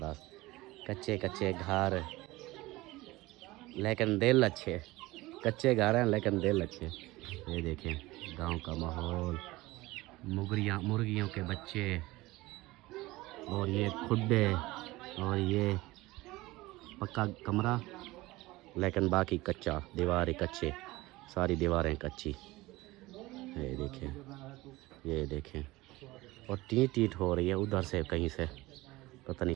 कच्चे कच्चे घर लेकिन दिल अच्छे। कच्चे घर हैं लेकिन दिल अच्छे। ये देखें गांव का माहौल, मुर्गियों के बच्चे, और ये खुड्डे, और ये पक्का कमरा लेकिन बाकी कच्चा, दीवारें कच्चे, सारी दीवारें कच्ची। ये देखें और टीट हो रही है उधर से कहीं से, पता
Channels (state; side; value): quieter; left; 19.8 dB